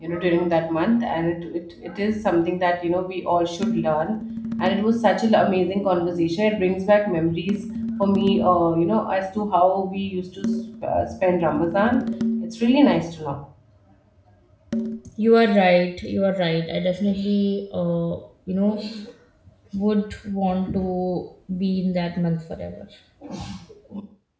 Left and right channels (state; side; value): identical; both; correlation 1.00